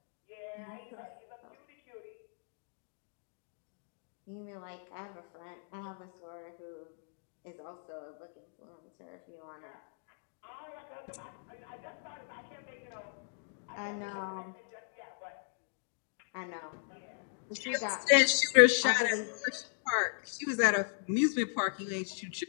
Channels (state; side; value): silent; right; digital silence